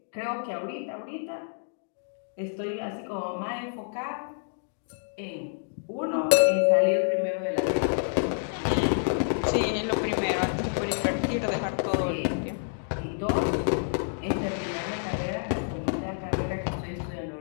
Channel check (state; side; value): silent; right; digital silence